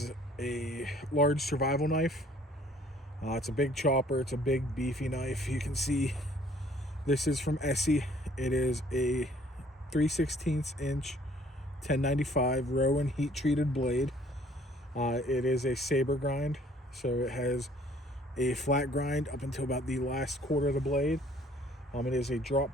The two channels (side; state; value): both; normal; correlation 0.58